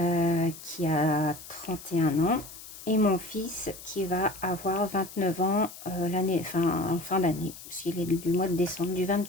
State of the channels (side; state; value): left; noise; hiss, 15 dB below the sound